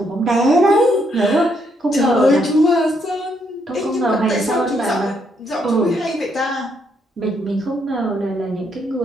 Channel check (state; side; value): normal; both; correlation 0.74